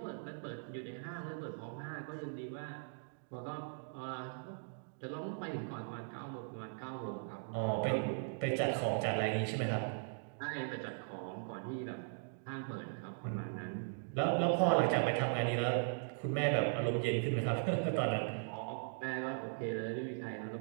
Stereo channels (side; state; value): left; silent; digital silence